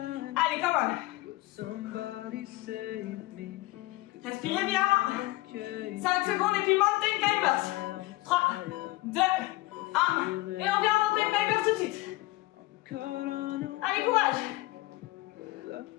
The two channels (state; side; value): quieter; right; 19.8 dB